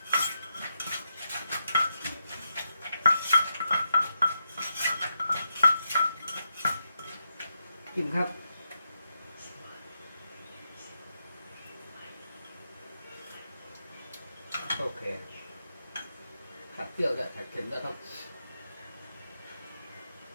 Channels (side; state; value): both; inverted; correlation -0.84